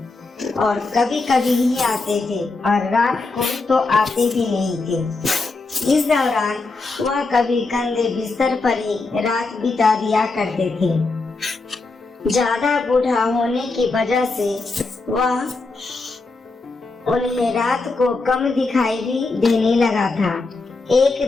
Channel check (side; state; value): right; quieter; 3.7 dB